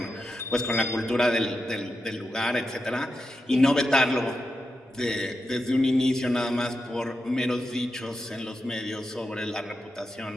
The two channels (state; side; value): normal; both; correlation 0.88